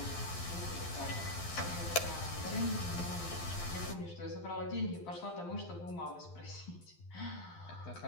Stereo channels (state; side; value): late; right; 12 ms